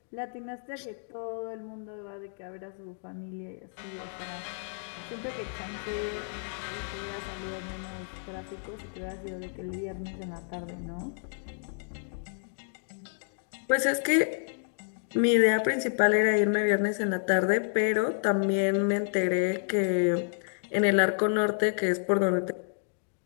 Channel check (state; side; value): silent; right; digital silence